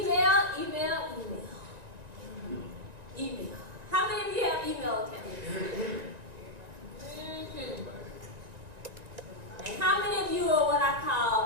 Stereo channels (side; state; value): left; late; 1.9 ms